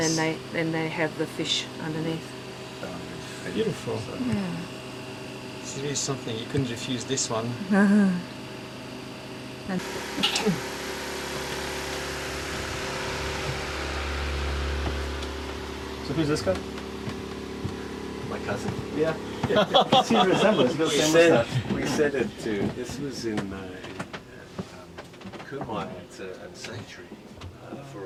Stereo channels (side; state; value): both; identical; correlation 1.00